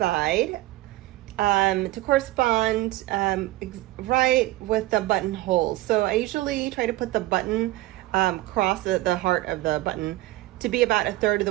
to correspond right with the buttonholes. So I usually try to put the button across the heart of the button to be about 1/3 of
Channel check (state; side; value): quieter; left; 18.0 dB